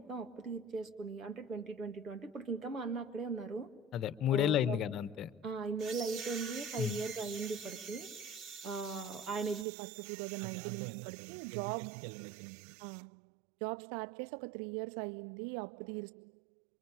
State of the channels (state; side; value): drops out; left; at 9.7 s